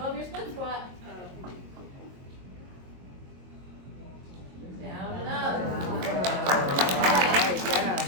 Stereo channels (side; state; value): left; late; 22 ms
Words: your split squat. Down and up.